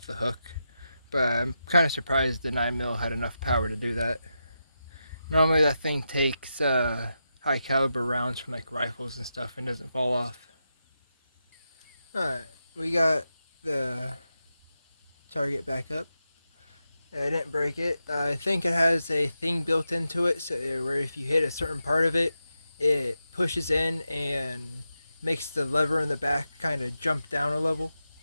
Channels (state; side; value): inverted; both; correlation -0.88